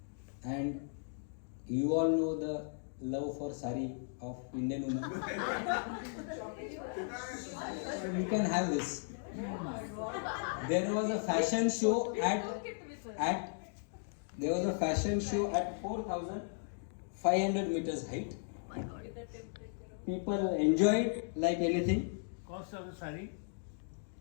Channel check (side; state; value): right; silent; digital silence